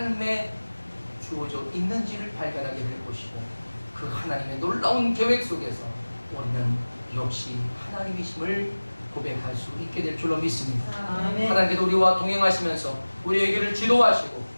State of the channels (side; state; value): both; inverted; correlation -1.00